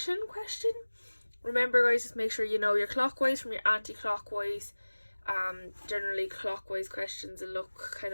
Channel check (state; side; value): inverted; both; correlation -1.00